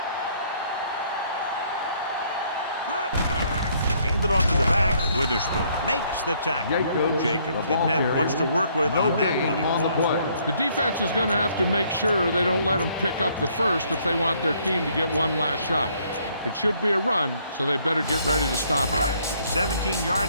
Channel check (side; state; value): both; inverted; correlation -0.66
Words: Handed off to the back. Witherspoon makes the tackle. Jacobs didn't have much to work with on that running on the play. play. The defense is going to have to make sure they don't let them pick up the first if they want their team to get one last shot. It should be a run, so they better get ready to stop it. The